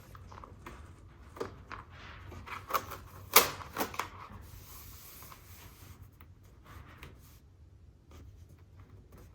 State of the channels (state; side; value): identical; both; correlation 1.00